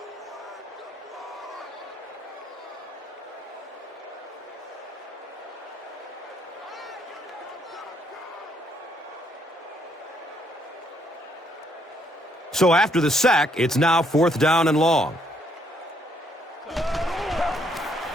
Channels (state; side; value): normal; both; correlation 0.70